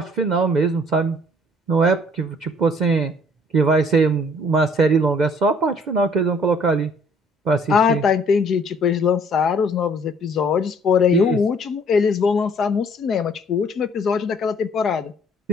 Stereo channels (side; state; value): both; normal; correlation 0.59